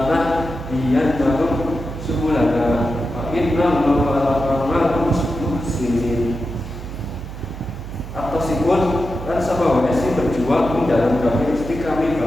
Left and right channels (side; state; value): right; noise; hum, 10 dB below the sound